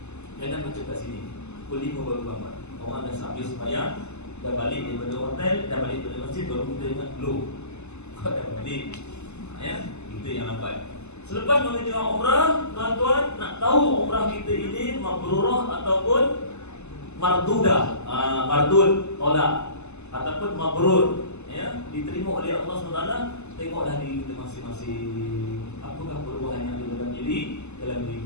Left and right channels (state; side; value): late; right; 0.82 ms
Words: Jangan macam kat sini. Pukul 5 baru bangun. Orang dah habis sembahyang, dah balik daripada hotel, dah balik daripada masjid, baru kita ingat, loh, kau dah balik. Ya, itu yang lambat. Selepas mengerjakan umrah, tuan-tuan nak tahu umrah kita ini mabrurah ataupun mardudah, mardud, tolak, ataupun mabrur, ya, diterima oleh Allah SWT. Tengoklah diri kita masing-masing. Apakah perubahan yang ada dalam diri